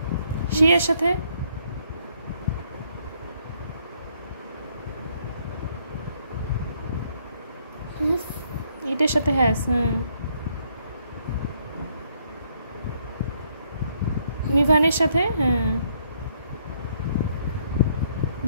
সি এর সাথে ইটের সাথে হ্যাজ। মিভানের সাথে, হ্যাঁ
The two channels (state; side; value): inverted; both; correlation -0.70